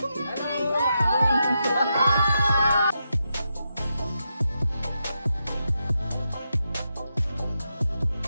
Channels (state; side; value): inverted; both; correlation -0.85